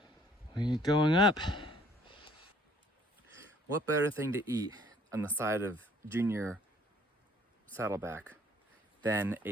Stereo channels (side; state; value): both; normal; correlation 0.60